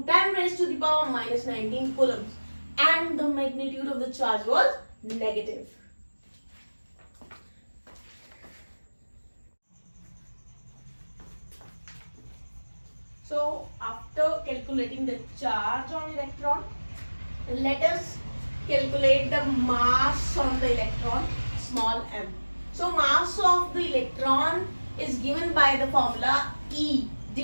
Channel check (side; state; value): both; inverted; correlation -1.00